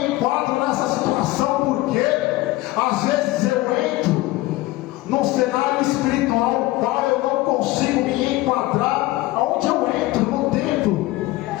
enquadro nessa situação, porque às vezes eu entro num cenário espiritual qual eu não consigo me enquadrar aonde eu entro no templo.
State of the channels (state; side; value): quieter; right; 18.5 dB